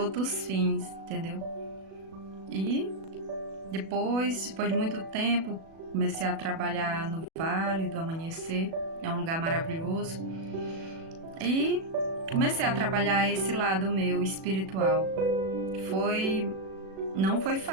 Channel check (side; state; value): left; late; 37 ms